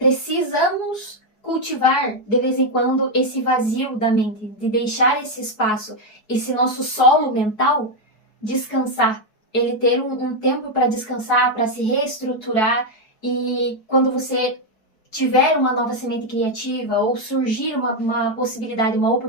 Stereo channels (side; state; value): right; late; 4.7 ms